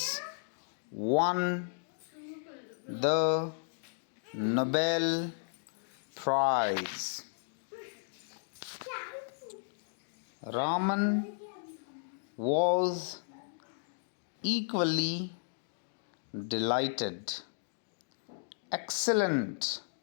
won the Nobel Prize." Raman was equally delighted. "Excellent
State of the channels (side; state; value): right; silent; digital silence